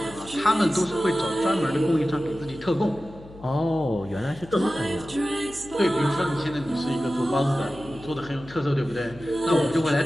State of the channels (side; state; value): left; noise; hum, 19 dB below the sound